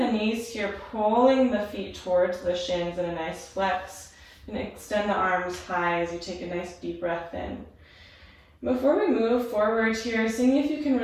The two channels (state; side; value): identical; both; correlation 1.00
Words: knees here, pulling the feet towards the shins in a nice flex. And extend the arms high as you take a nice deep breath in. Before we move forward here, seeing if you can